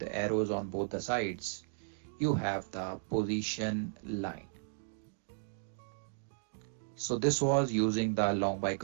arrows on both the sides, you have the position line. So this was using the long by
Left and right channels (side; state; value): left; silent; digital silence